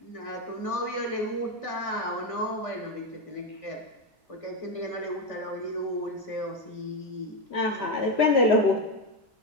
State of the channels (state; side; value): normal; both; correlation 0.10